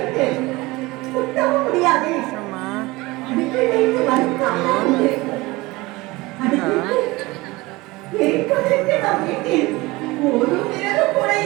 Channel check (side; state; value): left; quieter; 21.7 dB